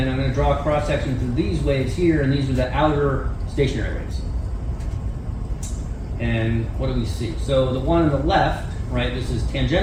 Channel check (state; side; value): identical; both; correlation 1.00